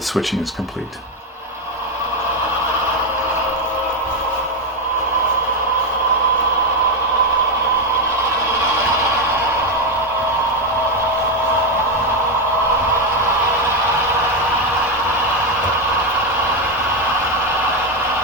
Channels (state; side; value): normal; both; correlation 0.08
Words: switching is complete.